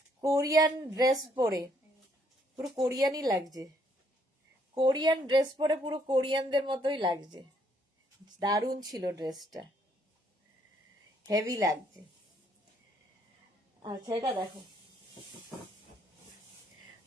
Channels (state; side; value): normal; both; correlation 0.69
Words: কোরিয়ান ড্রেস পরে, পুরো কোরিয়ানই লাগছে। কোরিয়ান ড্রেস পরে পুরো কোরিয়ানদের মতোই লাগছে। দারুণ ছিল ড্রেসটা, হেভি লাগছে। আচ্ছা, এটা দেখো